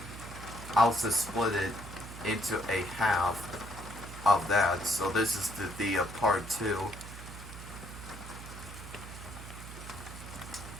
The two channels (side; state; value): right; noise; hum, 12 dB below the sound